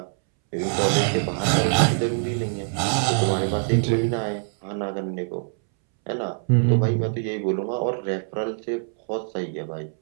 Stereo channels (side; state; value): left; silent; 63 dB below the other